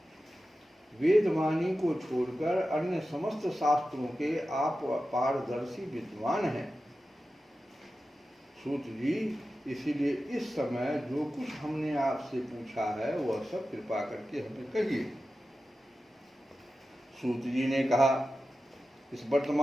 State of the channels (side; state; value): both; normal; correlation 0.93